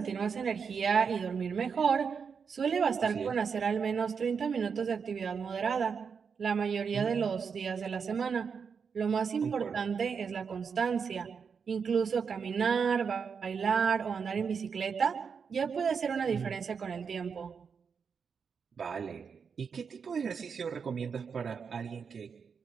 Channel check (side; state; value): left; quieter; 6.1 dB